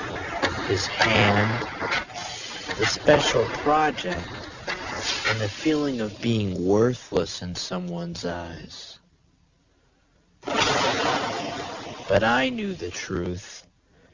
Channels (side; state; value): both; identical; correlation 1.00